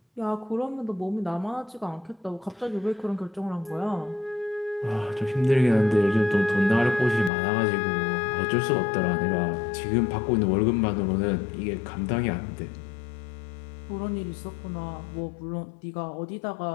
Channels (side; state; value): right; drops out; at 7.3 s